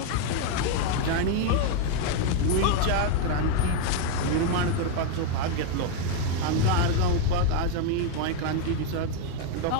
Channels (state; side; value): different; both; correlation 0.01